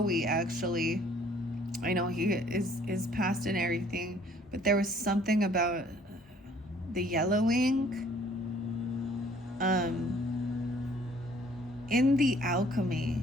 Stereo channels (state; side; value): normal; both; correlation 0.58